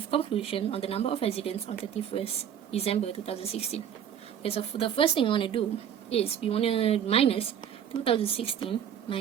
conclusion on the number of residents on 31st December 2016. Okay, so for the first thing I want to do is we want to minus 2016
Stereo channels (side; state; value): left; quieter; 9.1 dB